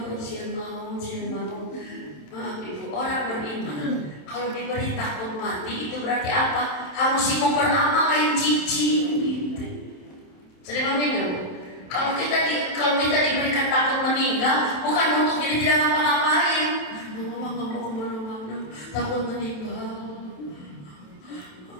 sian mau. Maaf Ibu, orang beriman kalau diberi takut mati itu berarti apa? Harus ikut beramal lain cicing gitu. Sedih ya Bu? Kalau kita diberikan takut meninggal, bukan untuk jadi tidak ngapa-ngapain. Mama nggak mau kemana-mana, takut meninggal.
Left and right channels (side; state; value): right; late; 27 ms